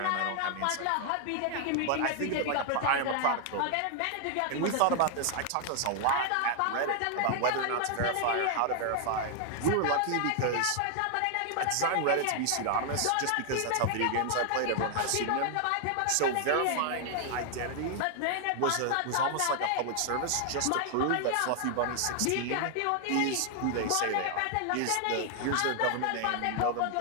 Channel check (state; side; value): different; both; correlation 0.00